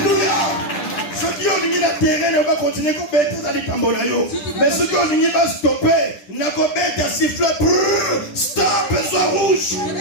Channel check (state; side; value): late; right; 10 ms